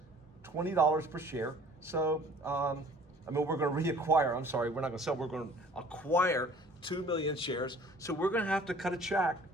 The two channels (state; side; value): normal; both; correlation 0.51